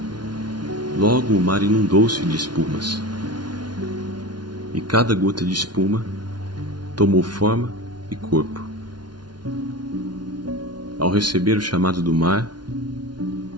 Logo o mar inundou-se de espumas, e cada gota de espuma tomou forma e corpo. Ao receber o chamado do mar,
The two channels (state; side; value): late; left; 0.70 ms